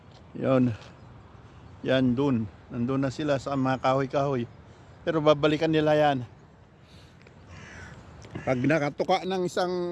Yun. Yan, doon. Nandun na sila sa mga kahoy-kahoy. Pero babalikan nila yan. Pag nakatuka ng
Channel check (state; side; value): identical; both; correlation 1.00